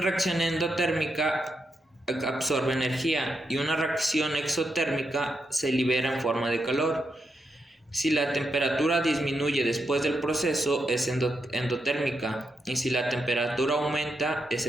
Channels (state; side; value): normal; both; correlation 0.83